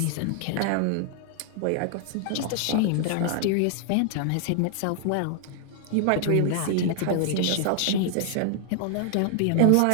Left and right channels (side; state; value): both; different; correlation 0.00